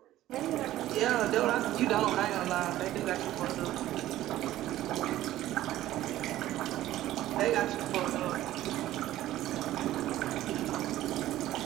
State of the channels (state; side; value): quieter; left; 14.3 dB